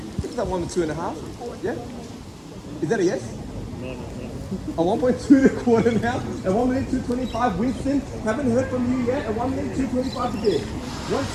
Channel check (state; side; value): identical; both; correlation 1.00